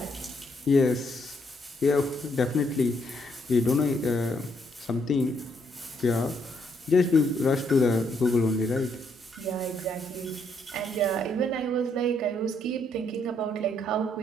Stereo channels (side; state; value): both; normal; correlation 0.73